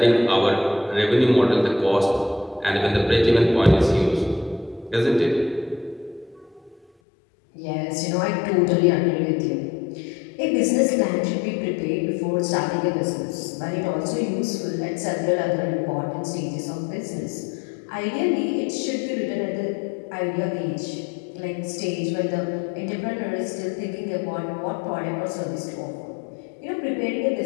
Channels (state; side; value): drops out; right; at 6.9 s